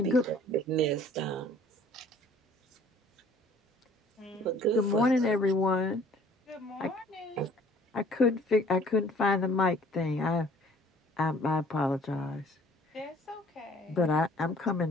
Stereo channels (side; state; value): both; normal; correlation 0.54